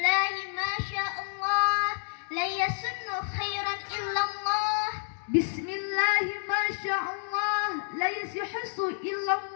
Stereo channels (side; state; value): right; silent; 58 dB below the other